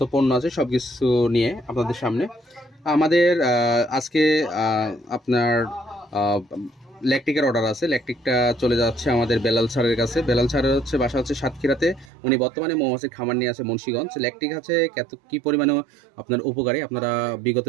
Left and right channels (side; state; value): left; drops out; at 12.1 s